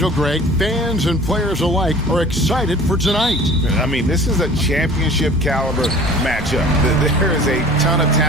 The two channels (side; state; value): both; normal; correlation 0.45